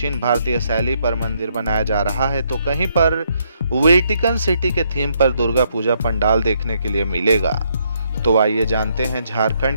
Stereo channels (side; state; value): both; inverted; correlation -0.74